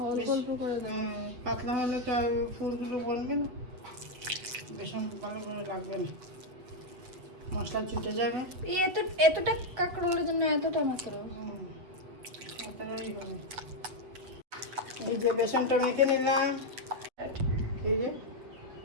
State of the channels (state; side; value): late; left; 8.0 ms